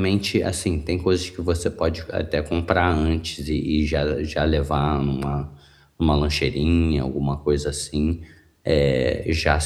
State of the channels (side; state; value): both; identical; correlation 1.00